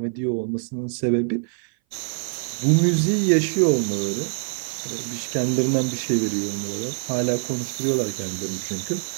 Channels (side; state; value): left; silent; 58 dB below the other